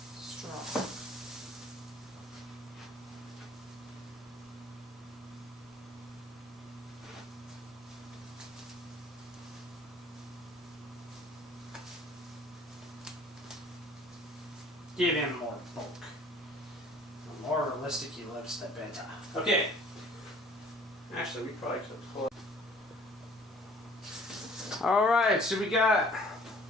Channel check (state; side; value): normal; both; correlation 0.53